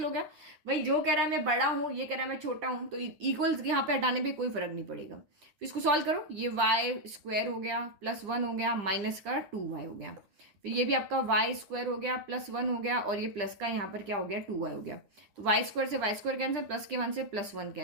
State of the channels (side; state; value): left; late; 9.9 ms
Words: हो गया। भाई जो कह रहा है मैं बड़ा हूं, ये कह रहा है मैं छोटा हूं, तो इक्वल्स यहाँ पे हटाने पे कोई फर्क नहीं पड़ेगा। फिर इसको सॉल्व करो, ये y² हो गया, +1 हो गया, माइनस का 2y हो गया। फिर ये भी आपका y² हो गया, +1 हो गया, और ये प्लस का यहाँ पर क्या हो गया, 2y हो गया। तो y² से y² कैंसिल, प्लस के 1 से +1